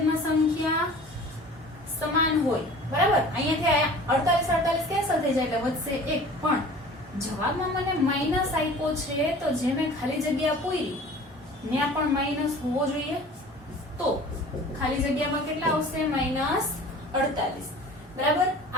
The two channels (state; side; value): normal; both; correlation 0.44